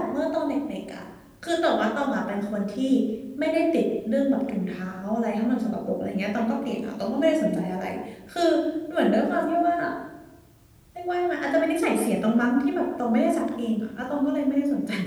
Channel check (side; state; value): both; identical; correlation 1.00